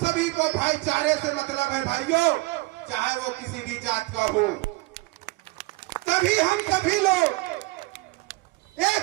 को भाईचारे से मतलब है भाइयों, चाहे वो किसी भी जात का हो। तभी हम सभी लोग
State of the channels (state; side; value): quieter; left; 22.8 dB